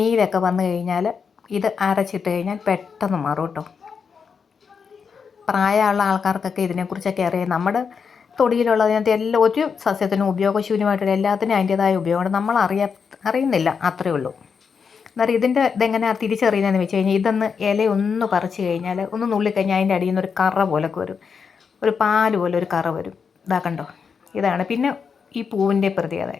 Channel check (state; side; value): quieter; right; 6.0 dB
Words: വന്നു കഴിഞ്ഞാൽ ഇത് അരച്ചിട്ട് കഴിഞ്ഞാൽ പെട്ടെന്ന് മാറും കേട്ടോ. പ്രായമുള്ള ആൾക്കാർക്കൊക്കെ ഇതിനെക്കുറിച്ചൊക്കെ അറിയാം. നമ്മുടെ തൊടിയിലുള്ളതിനകത്ത് എല്ലാം ഒരു സസ്യത്തിനും ഉപയോഗശൂന്യമായിട്ടുള്ള എല്ലാത്തിനും അതിൻ്റേതായ ഉപയോഗമുണ്ട്. നമ്മൾ അറിയുന്നില്ല, അത്രയേ ഉള്ളൂ. അന്നേരം ഇതെങ്ങനെയാണ് തിരിച്ചറിയുന്നതെന്ന് വെച്ച് കഴിഞ്ഞാൽ, ഇതൊന്ന് ഇലയൊന്ന് പറിച്ച് കഴിഞ്ഞാൽ ഒന്ന് നുള്ളിക്കഴിഞ്ഞാൽ അതിൻ്റെ അടിയിൽ നിന്ന് ഒരു കറ പോലൊക്കെ വരും, ഒരു പാല് പോലെ ഒരു കറ വരും. കണ്ടോ, ഇതാണ്. പിന്നെ ഈ പൂവിൻ്റെ പ്രത്യേകത,